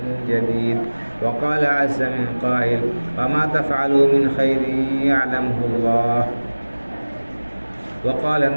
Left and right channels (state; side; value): inverted; both; correlation -1.00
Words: جديد وقال عز من قائل وما تفعلوا من خير يعلمه الله وقال